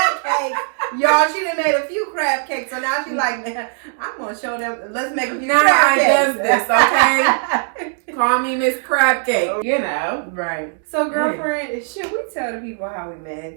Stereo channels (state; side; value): silent; left; 66 dB below the other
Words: cake. Y'all, she done made a few crab cakes, so now she's like, man, I'm gonna show them. Let's make a few crab cakes. Now I does this, okay? Call me Miss Crab Cake, you know. Right. So, girlfriend, should we tell the people how we